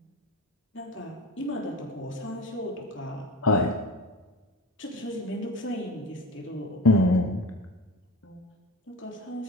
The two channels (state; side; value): normal; both; correlation 0.32